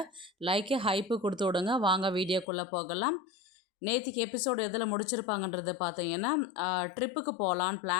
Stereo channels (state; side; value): drops out; right; at 2.5 s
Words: லைக்கு ஹைப்பு கொடுத்து விடுங்க. வாங்க வீடியோக்குள்ளே போகலாம். நேற்றுக்கு எபிசோடு எதில் முடிச்சிருப்பாங்கன்றது பார்த்தீங்கன்னா, ட்ரிப்புக்கு போகலான்னு